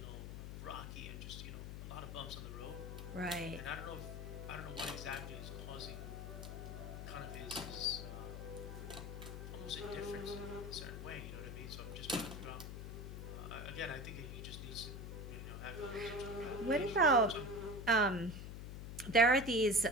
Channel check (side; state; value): left; noise; hum, 7 dB below the sound